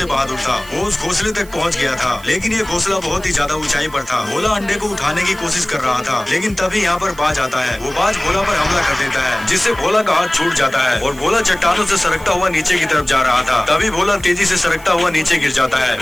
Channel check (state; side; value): noise; right; hiss, 21 dB below the sound